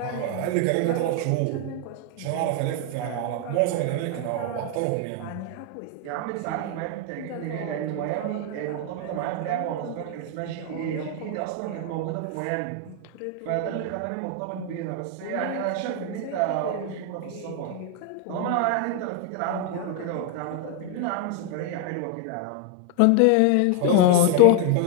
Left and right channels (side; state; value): both; different; correlation 0.01